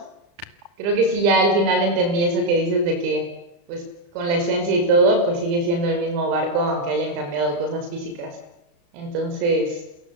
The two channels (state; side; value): late; left; 35 ms